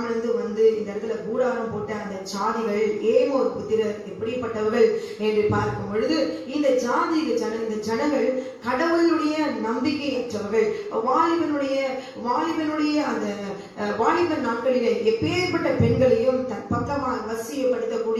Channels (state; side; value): identical; both; correlation 1.00